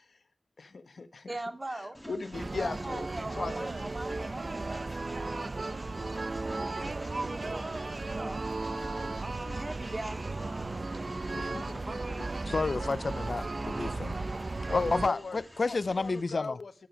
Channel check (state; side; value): normal; both; correlation 0.94